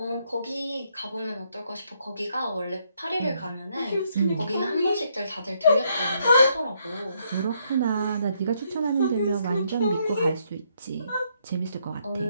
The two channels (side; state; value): both; inverted; correlation -0.73